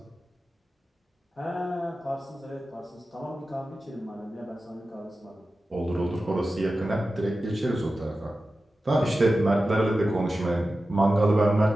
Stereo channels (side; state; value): both; normal; correlation 0.94